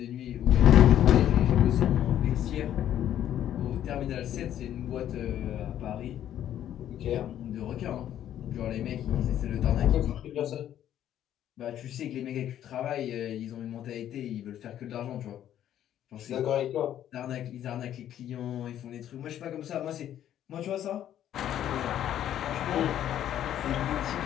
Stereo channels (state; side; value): quieter; right; 11.1 dB